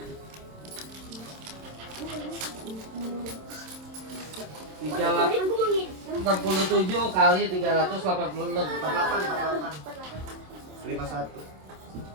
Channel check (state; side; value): late; left; 27 ms